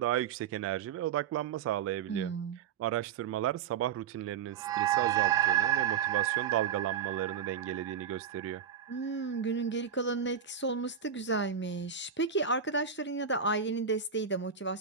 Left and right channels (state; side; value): quieter; left; 7.6 dB